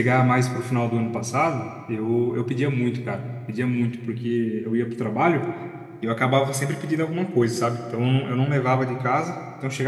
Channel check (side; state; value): both; identical; correlation 1.00